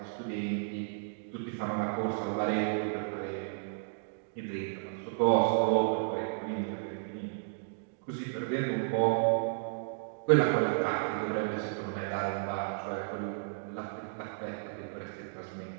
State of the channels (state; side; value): silent; left; digital silence